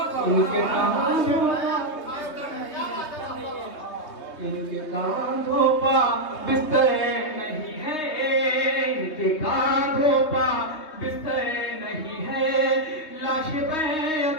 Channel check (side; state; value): right; late; 3.2 ms